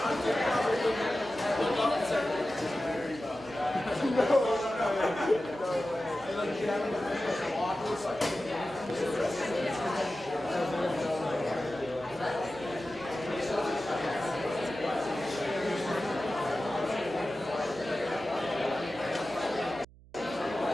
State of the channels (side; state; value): right; noise; hum, 23 dB below the sound